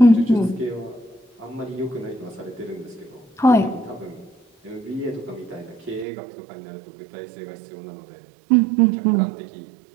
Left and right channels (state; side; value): drops out; left; at 6.1 s